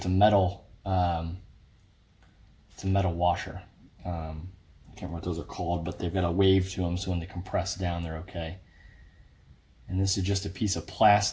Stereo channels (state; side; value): identical; both; correlation 1.00